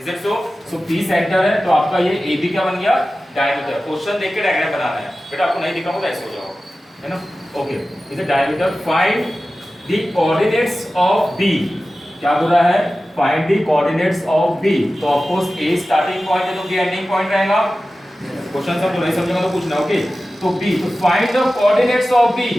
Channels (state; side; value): normal; both; correlation 0.95